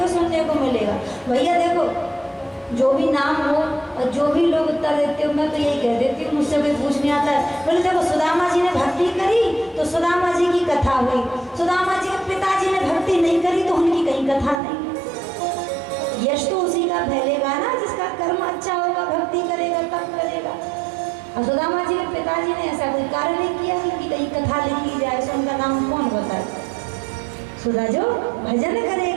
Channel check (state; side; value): drops out; left; at 14.6 s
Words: सुनने को मिलेगा। भैया देखो, जो भी नाम हो और जो भी लोग उत्तर देते हो, मैं तो यही कह देती हूँ, मुझसे कोई पूछने आता है, बोले देखो सुदामा जी ने भक्ति करी तो सुदामा जी की कथा हुई, सुदामा जी के पिताजी ने भक्ति नहीं करी तो उनकी कहीं कथा नहीं। यश तो उसी का फैलेगा ना जिसका कर्म अच्छा होगा, भक्ति करेगा तब करेगा। और सुदामा जी के पिताजी ने ऐसा कोई कार्य नहीं किया कि कहीं कथा लिखी जाए, सो उनका नाम कौन बताए? सुधा जो भजन